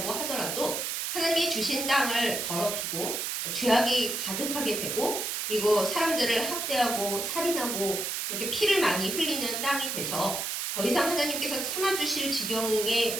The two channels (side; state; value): right; noise; hiss, 2 dB below the sound